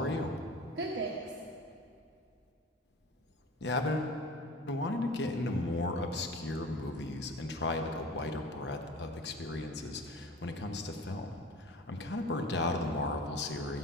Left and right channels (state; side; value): normal; both; correlation 0.38